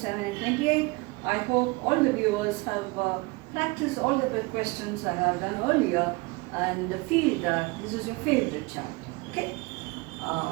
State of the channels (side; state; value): left; quieter; 25.2 dB